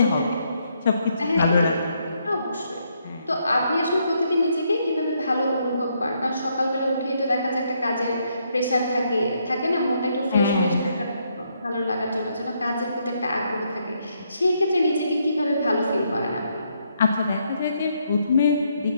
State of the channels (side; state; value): both; inverted; correlation -0.75